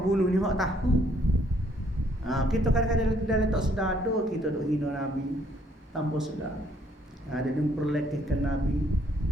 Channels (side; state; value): both; normal; correlation 0.67